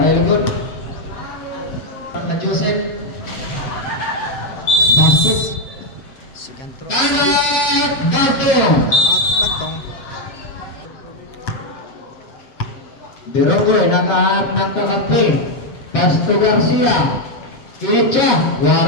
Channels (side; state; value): right; late; 7.7 ms